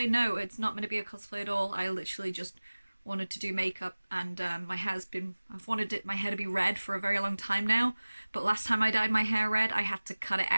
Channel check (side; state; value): both; inverted; correlation -1.00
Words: No, it's not meant to be a cosplay at all. I literally just wanted to do makeup, and I've wanted my hair to be red for a very long time now, but last time I dyed my hair red I had to cut it